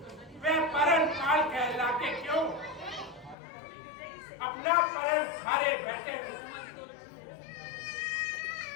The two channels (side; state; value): right; drops out; at 3.4 s